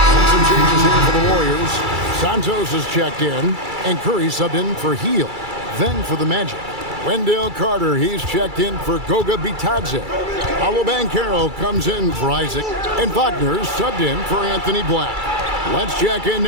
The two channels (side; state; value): left; late; 2.3 ms